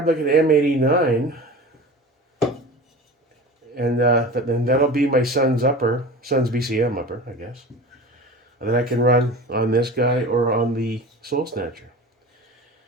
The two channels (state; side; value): normal; both; correlation 0.35